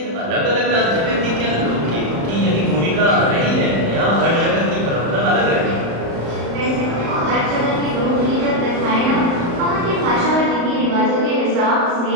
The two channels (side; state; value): left; late; 35 ms